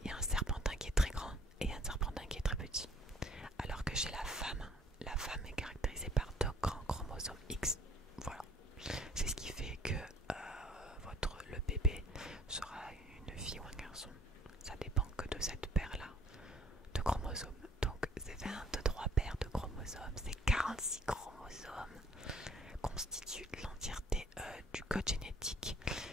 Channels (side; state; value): both; normal; correlation 0.57